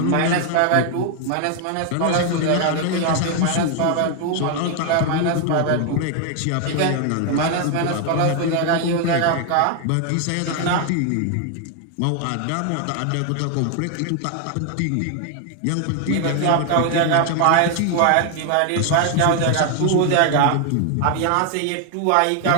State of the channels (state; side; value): different; both; correlation 0.00